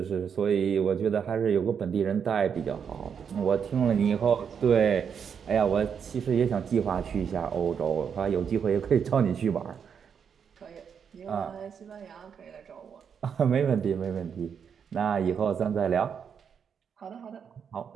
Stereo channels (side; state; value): left; quieter; 7.2 dB